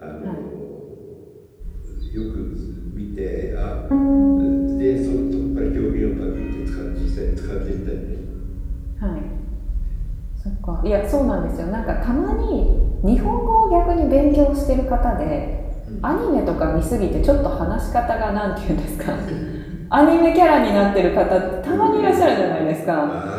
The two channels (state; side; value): identical; both; correlation 1.00